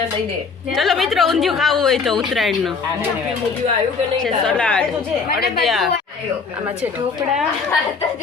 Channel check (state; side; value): quieter; right; 5.0 dB